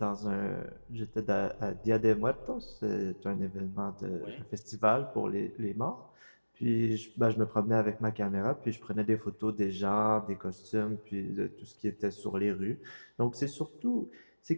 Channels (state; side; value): inverted; both; correlation -1.00